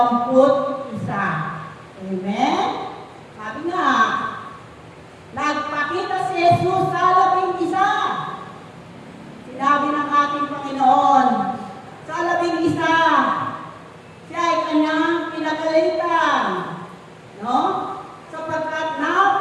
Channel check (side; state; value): both; identical; correlation 1.00